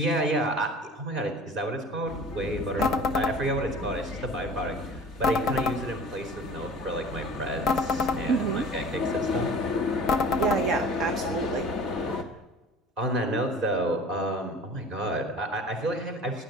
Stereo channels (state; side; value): normal; both; correlation 0.43